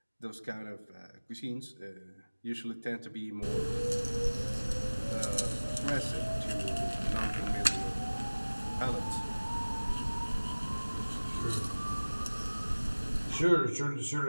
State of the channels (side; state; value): both; inverted; correlation -1.00